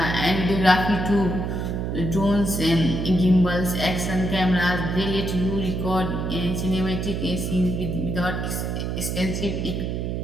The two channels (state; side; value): noise; right; hum, 2 dB below the sound